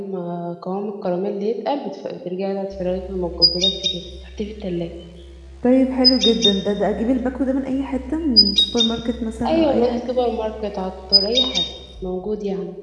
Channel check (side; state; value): both; identical; correlation 1.00